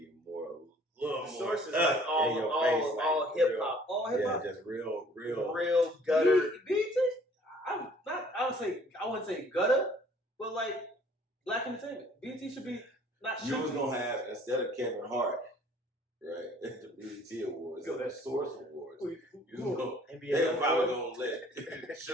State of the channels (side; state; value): both; normal; correlation 0.56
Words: more. Source is like all hip hop, all hip hop, just real gutter. BET. I wouldn't say gutter, but like black entertainment. BET should be not. You was gonna have, instead of Kevin Hart, right, at the BET Awards, Yo, the Source Awards. You know, NBA they're probably gonna let